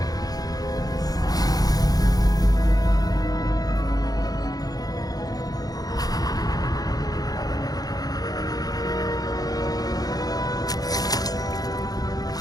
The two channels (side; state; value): right; late; 0.18 ms